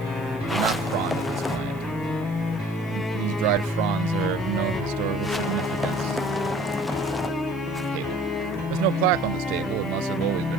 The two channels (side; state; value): right; noise; hiss, 27 dB below the sound